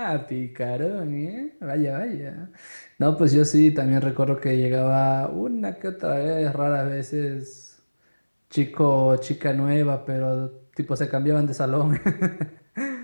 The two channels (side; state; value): both; inverted; correlation -1.00